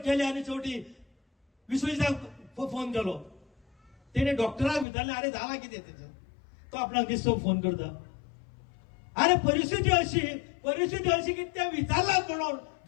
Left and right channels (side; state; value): right; drops out; at 4.9 s